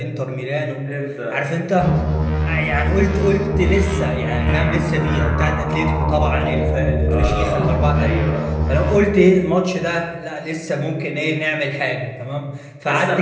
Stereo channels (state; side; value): identical; both; correlation 1.00